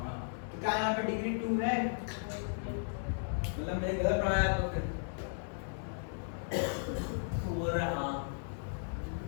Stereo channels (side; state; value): right; silent; digital silence